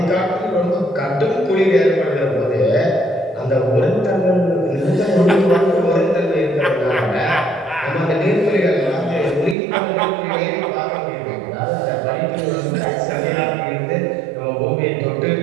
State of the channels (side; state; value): left; drops out; at 9.6 s